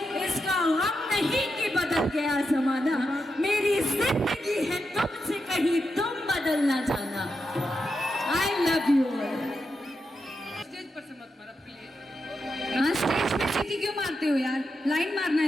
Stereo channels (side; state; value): both; normal; correlation 0.86